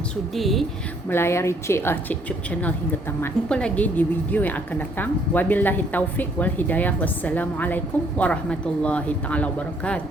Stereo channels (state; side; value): normal; both; correlation 0.65